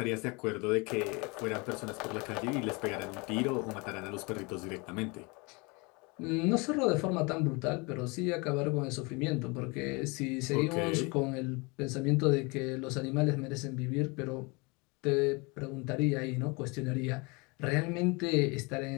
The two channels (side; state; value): right; quieter; 28.3 dB